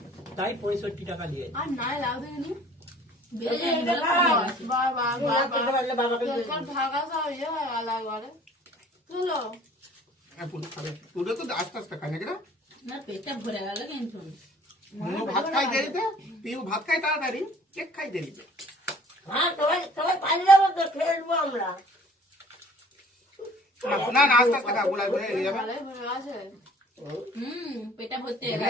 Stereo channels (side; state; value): both; normal; correlation 0.53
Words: তাই 65 টাকা নিয়েছে। আর নাই লাউ দেখিনি বেড়ে যায় বলে কমে গেছে। বাবা বাবাকে ঢাকা সব ইয়ে হয়ে গেল একবারে চলো হ্যাঁ, পুরো খাবে। পুরো তো আস্তে আস্তে খায় নাকি না? না, পেটটা ভরে গেল কিন্তু। মনু ভাত খাই দেরিতে, পিউ ভাত খাই তাড়াতাড়ি, কেক খাই দেরিতে। হ্যাঁ সবাই সবাই পানি যাবো তো, খেলবো আমরা। না না, আস্তে আস্তে খা, গুলাই গুলাই হয়ে যাবে। ভালোই ভরে আছে পেটটা ভর্তি এখানে